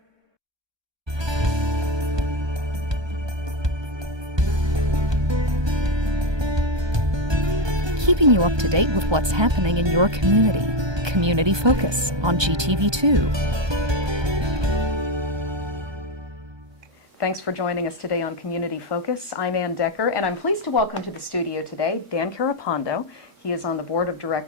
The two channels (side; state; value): left; late; 1.3 ms